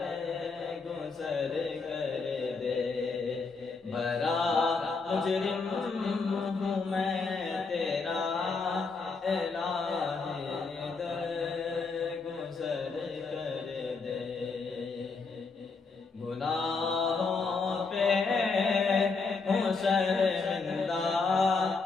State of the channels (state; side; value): quieter; right; 4.5 dB